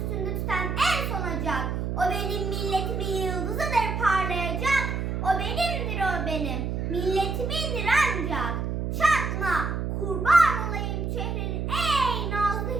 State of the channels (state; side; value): noise; right; hum, 2 dB below the sound